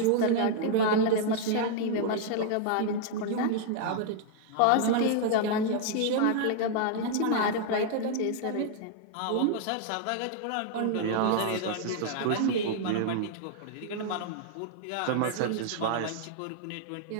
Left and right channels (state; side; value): different; both; correlation 0.00